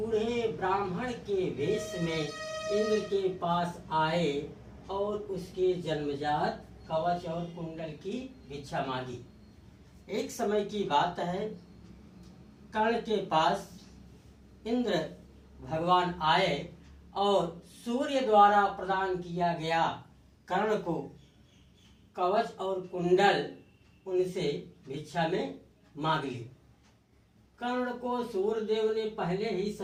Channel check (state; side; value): identical; both; correlation 1.00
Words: ब्राह्मण के वेश में इंद्र के पास आए और उसके जन्मजात कवच और कुंडल की भिक्षा मांगी। एक समय की बात है, कर्ण के पास इंद्र भगवान आए और सूर्य द्वारा प्रदान किया गया कर्ण को कवच और कुंडल उनसे भिक्षा में मांग ली। कर्ण को सूर्यदेव ने पहले ही